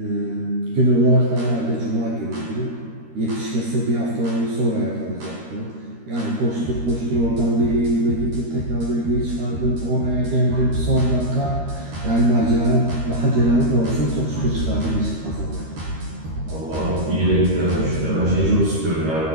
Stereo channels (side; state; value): left; late; 13 ms